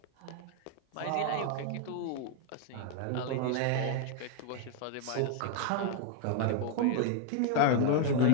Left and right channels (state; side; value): different; both; correlation 0.00